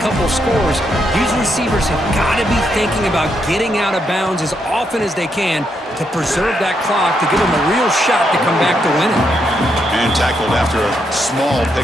of scores, these receivers have got to be thinking about getting out of bounds as often as they can to preserve that clock, to give them a real shot to come back to winning. And tackled after a small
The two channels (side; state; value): both; normal; correlation 0.79